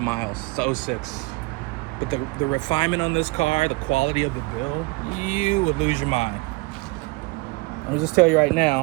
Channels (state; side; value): quieter; left; 24.4 dB